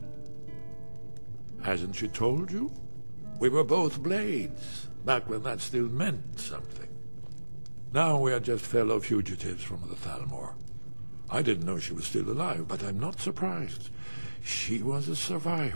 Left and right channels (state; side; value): inverted; both; correlation -1.00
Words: Hasn't she told you? We were both blades, back when that still meant something. Now we are just fellow fugitives from the Thalmor. I didn't know she was still alive, but I'm not surprised. She was a